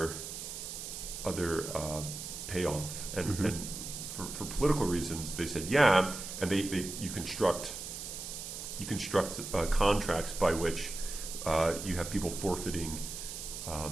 payoff? And mm-hmm. and for political reasons, they said yeah, and you construct contracts by which you have people forfeiting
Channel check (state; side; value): noise; right; hiss, 8 dB below the sound